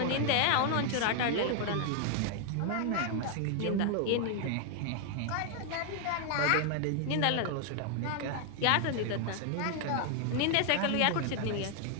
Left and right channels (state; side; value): different; both; correlation 0.00